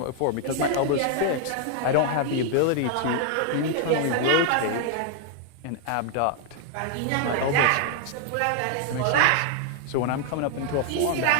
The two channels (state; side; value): different; both; correlation 0.00